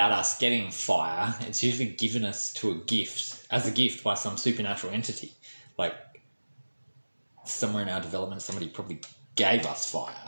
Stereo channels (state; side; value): inverted; both; correlation -1.00